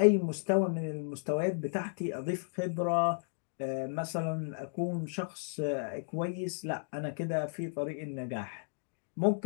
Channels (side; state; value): right; silent; digital silence